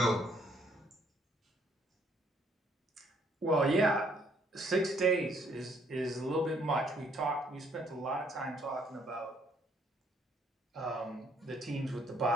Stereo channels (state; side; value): normal; both; correlation 0.66